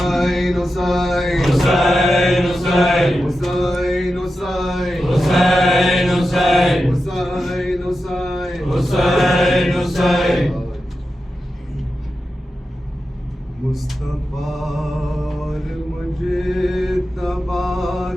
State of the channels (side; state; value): both; normal; correlation 0.91